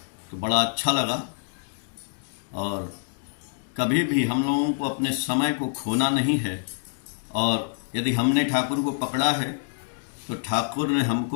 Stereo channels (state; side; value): silent; right; digital silence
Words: तो बड़ा अच्छा लगा। और कभी भी हम लोगों को अपने समय को खोना नहीं है, और यदि हमने ठाकुर को पकड़ा है तो ठाकुर ने